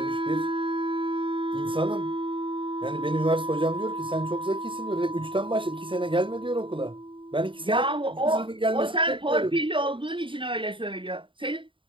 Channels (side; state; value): left; late; 0.25 ms